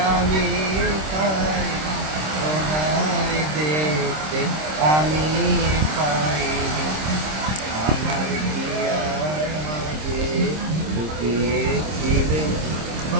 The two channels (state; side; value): late; left; 26 ms